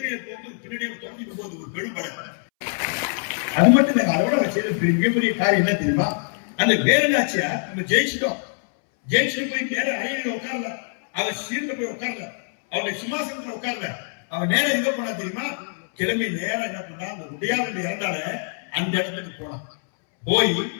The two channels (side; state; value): right; silent; 63 dB below the other